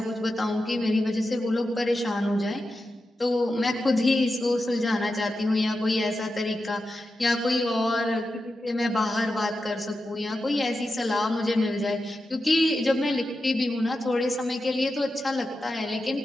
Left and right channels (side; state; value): both; normal; correlation 0.90